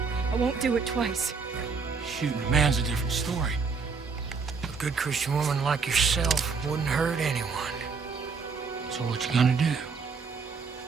won't do it twice. Shooting a man's a different story. A good Christian woman like yourself wouldn't hurt anyone. So what you gonna do?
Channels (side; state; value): left; quieter; 5.1 dB